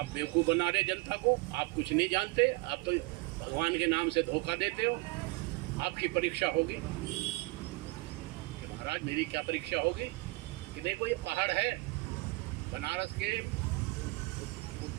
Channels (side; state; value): left; quieter; 24.0 dB